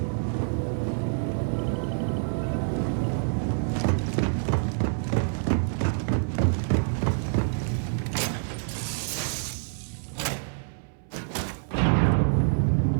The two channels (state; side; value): silent; left; 60 dB below the other